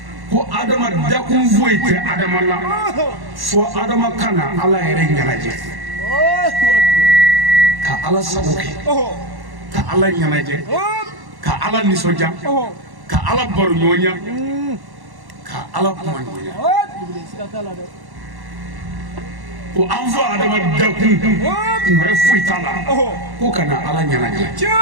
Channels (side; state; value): left; late; 1.1 ms